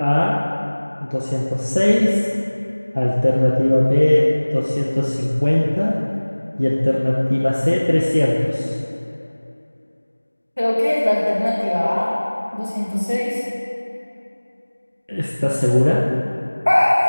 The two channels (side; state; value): both; inverted; correlation -1.00